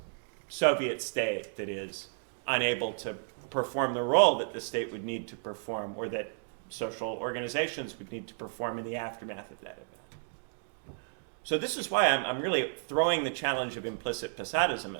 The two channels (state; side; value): silent; left; digital silence